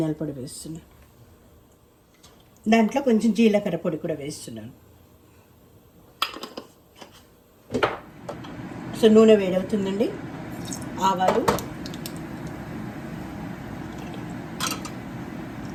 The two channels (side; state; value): both; identical; correlation 1.00